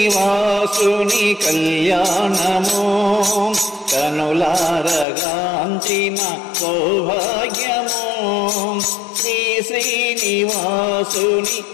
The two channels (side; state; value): right; drops out; at 5.1 s